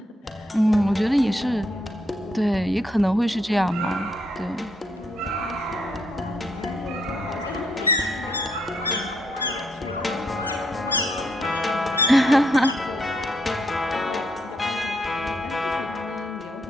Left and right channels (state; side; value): normal; both; correlation 0.75